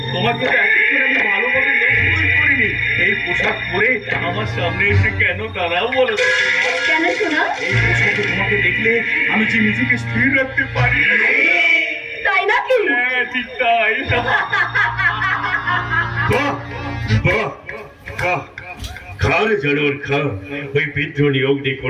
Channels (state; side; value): identical; both; correlation 1.00